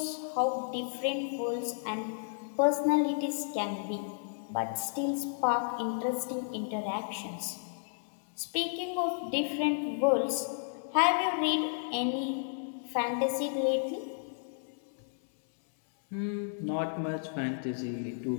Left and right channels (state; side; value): silent; right; digital silence